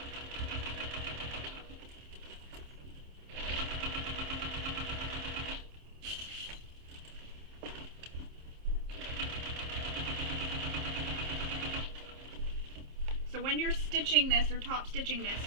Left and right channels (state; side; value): late; left; 27 ms